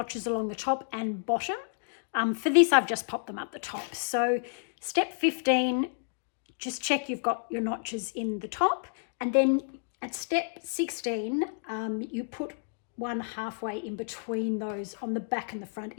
along the top and bottom. For this, I've just popped them up the top. So step 15, just check you've got your notches in the top, and then at step 16, you put one halfway in between those on the back and the front.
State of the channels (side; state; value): right; silent; digital silence